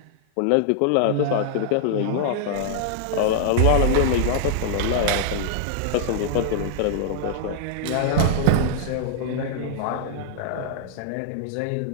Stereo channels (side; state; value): both; different; correlation -0.01